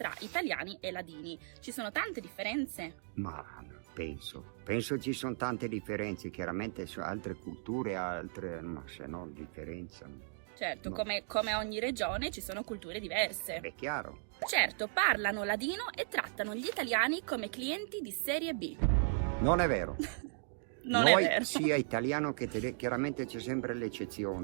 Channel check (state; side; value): silent; left; digital silence